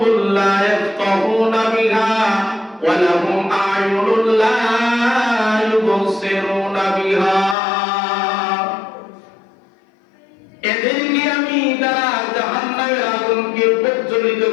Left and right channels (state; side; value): drops out; right; at 7.6 s